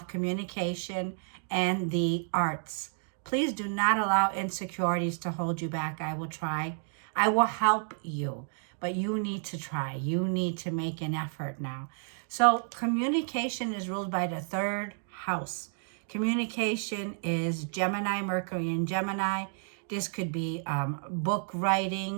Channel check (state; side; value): silent; left; 57 dB below the other